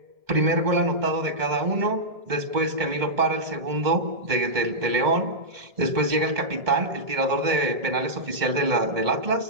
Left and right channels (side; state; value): left; late; 1.7 ms